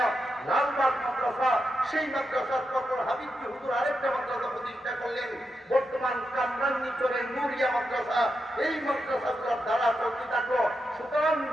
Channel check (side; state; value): both; normal; correlation 0.86